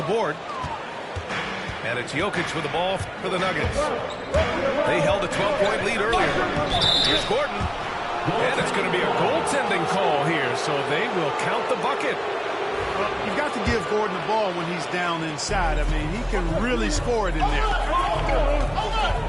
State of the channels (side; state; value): both; identical; correlation 1.00